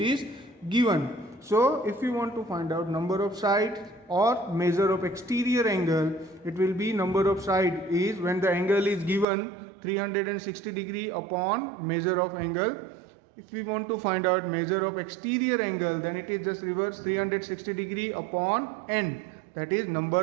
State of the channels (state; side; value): drops out; left; at 9.2 s